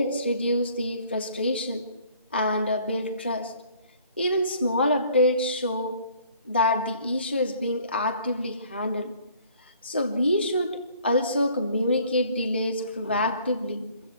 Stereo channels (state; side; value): inverted; both; correlation -0.56